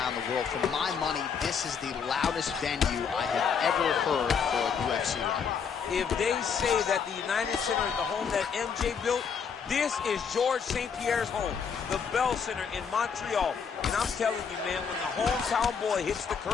the world, for my money, this is the loudest venue I have ever heard for a UFC run. If they say that the United Center is the home that MJ built, this is George St. Pierre's home, the Bell Center in Montreal. And I'm telling you, man, when the hometown boy hits the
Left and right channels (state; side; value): quieter; right; 6.5 dB